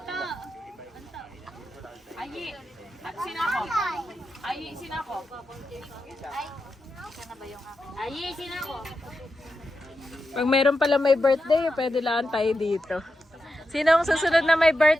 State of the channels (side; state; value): both; normal; correlation 0.88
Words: Ayi. At sinako. Ayi, sinako. Sana ba yung akin? Ayi, sinako. Pag mayroon pala may birthday, pwede lang tayo dito. Sino ang susunod na may